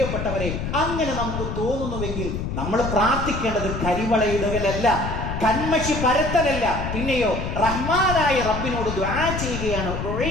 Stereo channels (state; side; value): noise; left; rumble, 4 dB below the sound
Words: അങ്ങനെ നമുക്ക് തോന്നുന്നുവെങ്കിൽ നമ്മൾ പ്രാർത്ഥിക്കേണ്ടത് കരിവളയിടുകയല്ല, കന്മഷി പരത്തലല്ല, പിന്നെയോ റഹ്മാനായ റബ്ബിനോട് ദുആ ചെയ്യുകയാണ്.